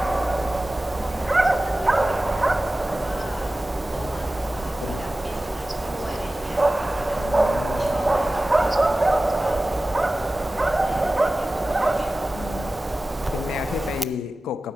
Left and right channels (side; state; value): both; normal; correlation 0.96